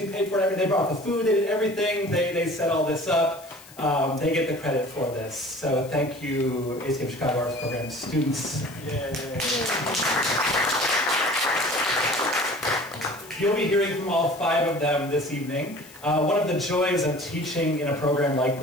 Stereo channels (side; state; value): left; noise; hiss, 21 dB below the sound